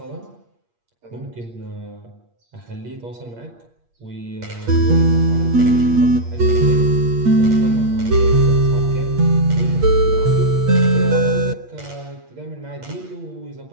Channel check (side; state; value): left; late; 8.5 ms